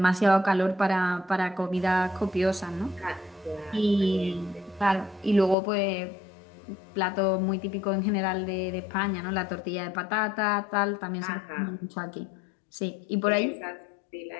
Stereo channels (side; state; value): right; drops out; at 5.6 s